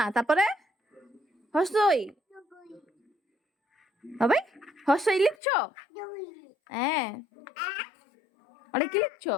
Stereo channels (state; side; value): drops out; right; at 5.4 s